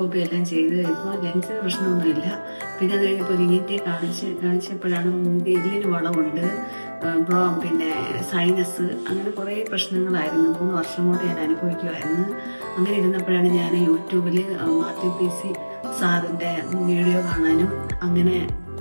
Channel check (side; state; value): both; inverted; correlation -1.00